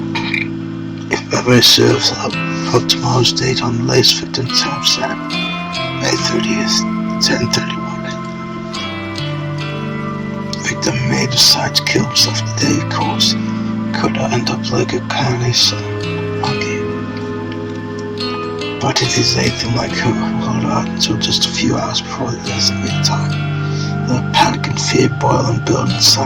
If memory serves, I'll put tomorrow's date on the latest victim timestamp, May 30th, 10:31. Victim may decide to kill himself today, of course. Could I end up like a carnage monkey? But if he's anything like her, hold on until just a few hours before the designated time. The panic and fear boil and build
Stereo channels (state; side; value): identical; both; correlation 1.00